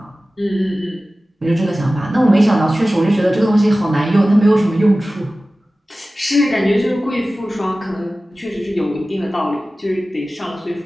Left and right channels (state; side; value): normal; both; correlation 0.96